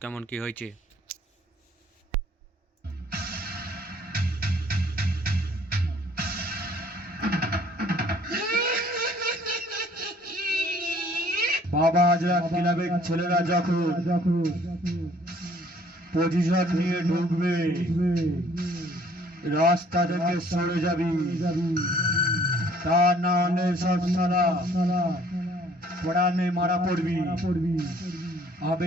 কেমন কি হয়েছে। বাবা হাজরা ক্লাবের ছেলেরা যখন পজিশন নিয়ে ঢুকবে, রাস্তা থেকে সরে যাবি, তা না হলে সব সালা পড়ানে মারা পড়বি।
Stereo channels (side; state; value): both; normal; correlation 0.58